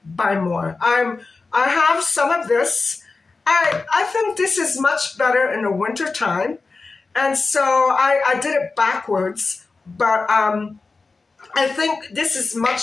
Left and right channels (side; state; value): right; quieter; 4.0 dB